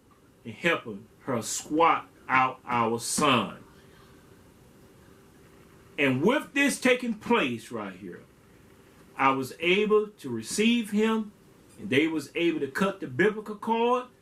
in helping her squat out our son. And with this taking place right here, I was able to receive him, and they was able to cut the biblical cord,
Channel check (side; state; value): both; identical; correlation 1.00